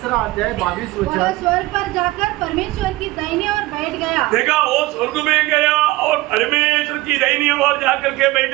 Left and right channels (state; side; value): quieter; left; 19.3 dB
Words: अध्याय 22 वह वचन स्वर्ग पर जाकर परमेश्वर की दाहिने ओर बैठ गया। देखा, वो स्वर्ग में गया और परमेश्वर की दाहिनी ओर जाकर के